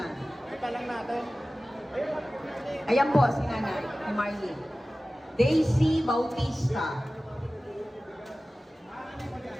Ito lang natin. Ayan po si Nanay, si Marlene. Daisy Bautista.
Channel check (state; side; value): normal; both; correlation 0.96